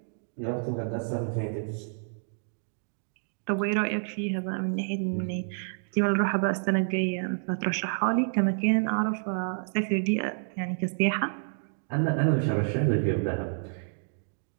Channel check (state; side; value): silent; left; digital silence